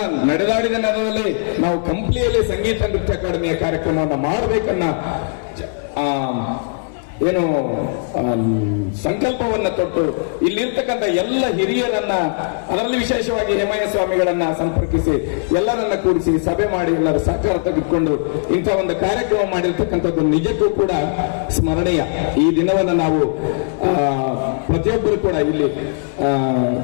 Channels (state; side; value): silent; right; digital silence